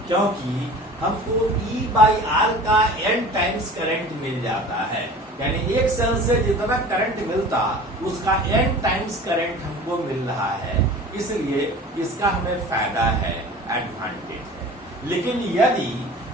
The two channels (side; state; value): both; normal; correlation 0.41